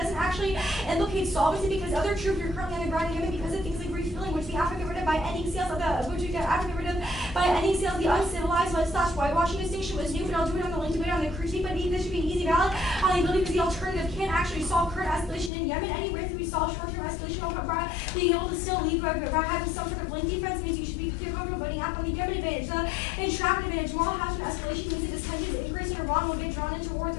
actually implicate solvency because other troops are currently on the ground in Yemen because of things like refueling, which we have to get rid of by ending sales of the uncivilized / whitewashing distinction was new, but I'll do it on the link debate on the critique, but this should be an easy ballot on the ability because the alternative can't actually solve current escalation in Yemen. Any risk that we solve short-term escalation by being able to still lead by having some sort of link defense means you should be comfortable voting out on the Yemen advantage. The entrapment advantage, moral hazard escalation means that this tensions increase in Iran will get drawn into war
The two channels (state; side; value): drops out; right; at 15.5 s